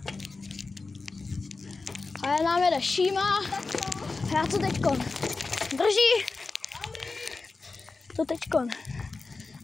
A nám jede Šíma. Já to teďkon. Drží. To teďkon.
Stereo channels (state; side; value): quieter; right; 3.9 dB